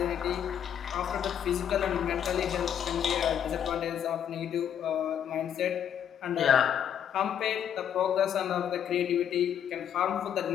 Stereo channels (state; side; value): quieter; right; 9.1 dB